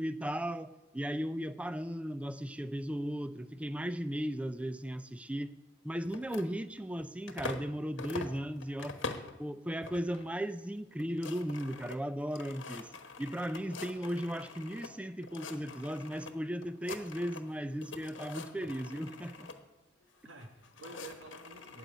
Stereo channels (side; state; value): both; normal; correlation 0.85